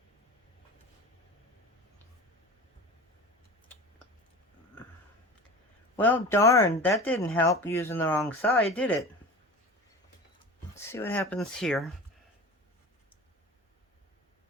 Well, darn, that didn't help using the wrong side, did it? Let's see what happens here.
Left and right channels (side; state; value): both; normal; correlation 0.34